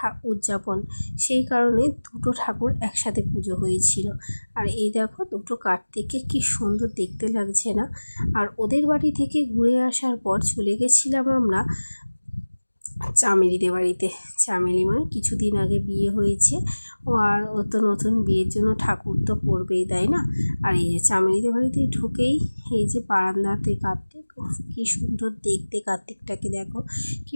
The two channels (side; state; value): both; inverted; correlation -1.00